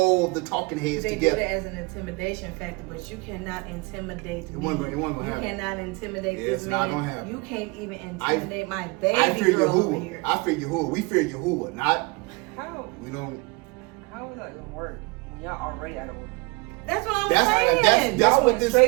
the talking heads together. They do it as an intimidation factor, but you cannot intimidate me. It wasn't gonna happen. You cannot intimidate this man. Not gonna happen. You can't even intimidate my baby I fear girl Yahuwah. over here. I fear Yahuwah. We fear Yahuwah, not. How? We don't. How is that gonna work when y'all already out of order? That's what I'm saying. That's y'all what went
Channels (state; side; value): quieter; left; 26.4 dB